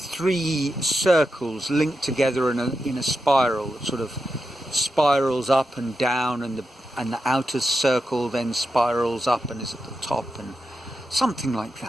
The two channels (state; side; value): normal; both; correlation 0.88